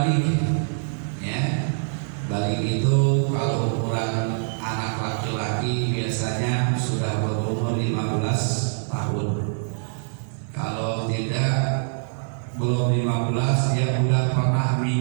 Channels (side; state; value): left; silent; 62 dB below the other